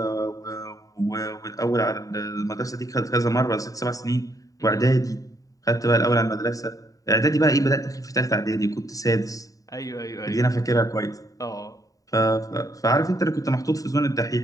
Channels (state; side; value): late; right; 0.16 ms